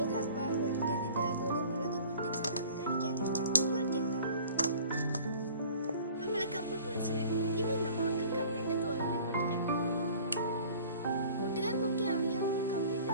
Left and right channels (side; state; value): both; inverted; correlation -0.48